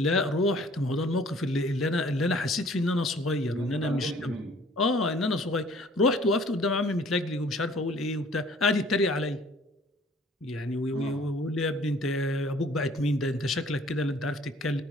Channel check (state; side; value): normal; both; correlation 0.54